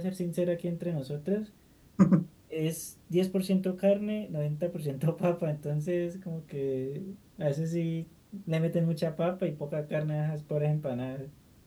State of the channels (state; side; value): identical; both; correlation 1.00